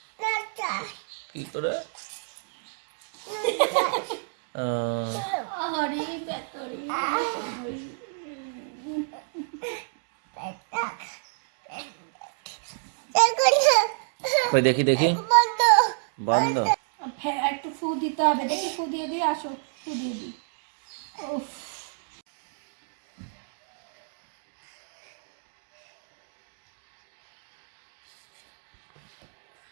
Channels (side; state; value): left; silent; digital silence